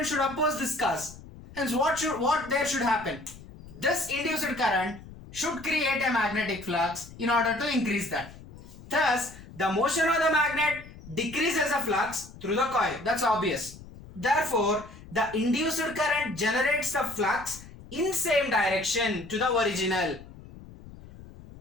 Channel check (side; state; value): left; noise; rumble, 17 dB below the sound